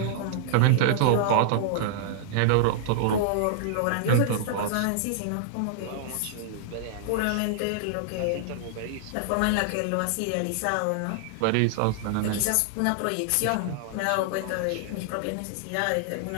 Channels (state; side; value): different; both; correlation -0.01